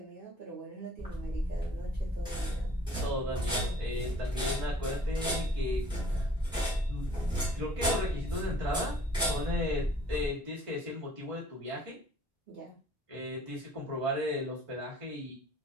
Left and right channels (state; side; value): normal; both; correlation 0.56